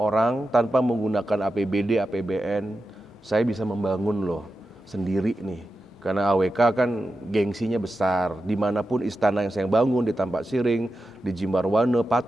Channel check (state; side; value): normal; both; correlation 0.91